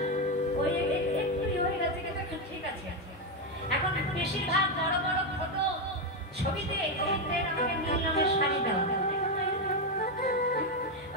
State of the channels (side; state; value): both; normal; correlation 0.07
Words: ওই বেশিরভাগ বড় বড় ফটো ছবিতে গোবিন্দের আমাকে নীল রঙের শাড়ি দেওয়া,